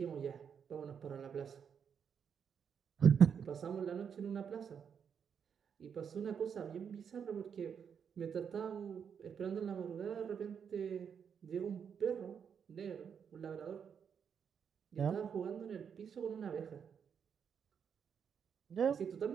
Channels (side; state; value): left; quieter; 7.3 dB